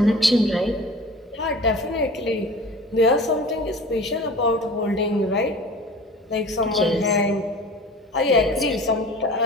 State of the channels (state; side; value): normal; both; correlation 0.40